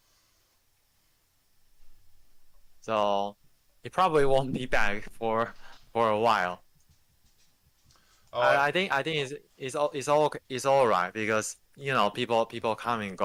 So he probably won't be back for a while. Oh, I think it's all right, because people come and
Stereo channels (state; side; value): identical; both; correlation 1.00